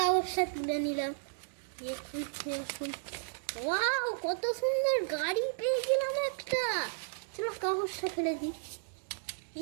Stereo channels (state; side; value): silent; left; digital silence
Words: তুলে নিলাম, ওয়াও কত সুন্দর গাড়ি পেয়ে গেলাম একটা। চলো কাগজটা ফেলে দিই,